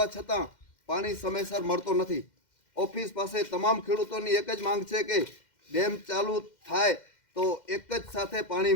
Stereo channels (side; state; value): right; late; 2.1 ms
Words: છતાં પાણી સમયસર મળતો નથી. ઓફિસ પાસે તમામ ખેડૂતોની એક જ માંગ છે કે ડેમ ચાલુ થાય તો એક જ સાથે